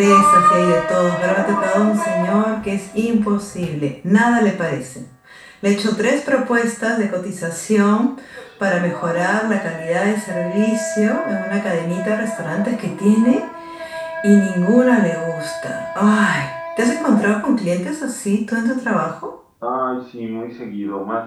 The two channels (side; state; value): both; identical; correlation 1.00